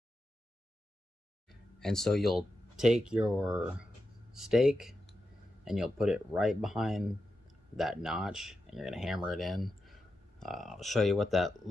And so you'll take your stake and you'll put it right behind that notch, and you're gonna hammer it in. I'll show you what that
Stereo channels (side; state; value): both; normal; correlation 0.89